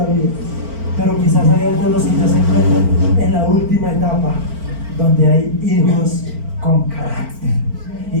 vida. Pero quizás hay algunos que ya se encuentran en la última etapa, donde hay hijos con carácter. Y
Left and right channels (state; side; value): late; left; 4.4 ms